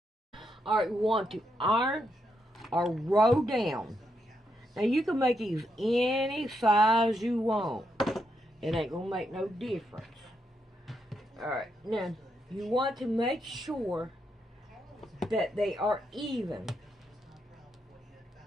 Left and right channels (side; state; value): both; normal; correlation 0.81